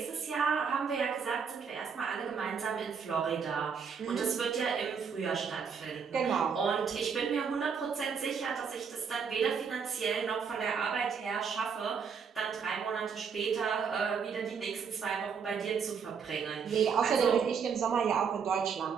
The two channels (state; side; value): quieter; left; 6.3 dB